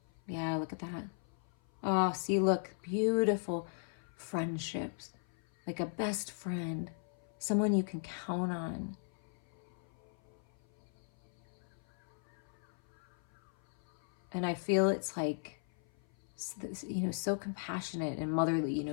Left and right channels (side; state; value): right; silent; 53 dB below the other